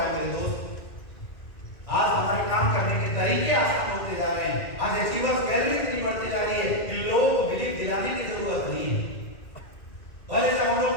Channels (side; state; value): right; late; 2.1 ms